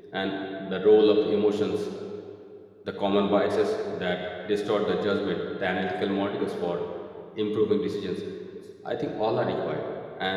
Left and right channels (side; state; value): both; identical; correlation 1.00